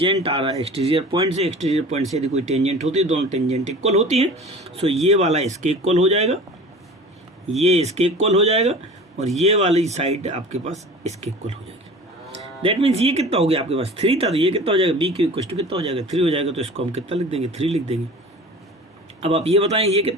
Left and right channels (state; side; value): normal; both; correlation 0.40